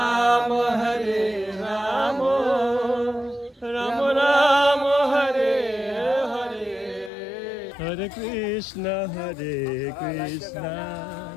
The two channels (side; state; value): right; drops out; at 7.1 s